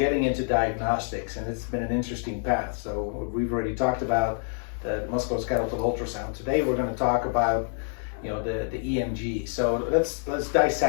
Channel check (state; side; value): silent; right; 60 dB below the other